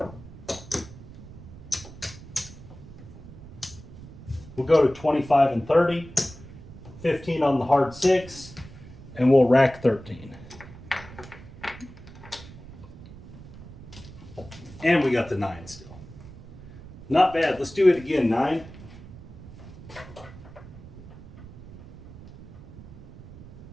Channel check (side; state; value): right; noise; rumble, 16 dB below the sound